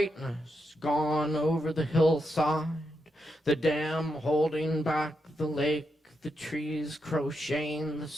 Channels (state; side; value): normal; both; correlation 0.83